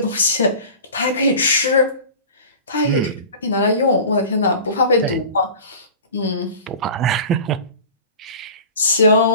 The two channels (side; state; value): both; inverted; correlation -0.38